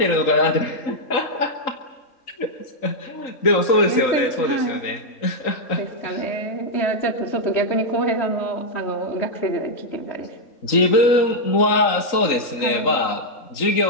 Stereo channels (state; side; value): late; right; 3.9 ms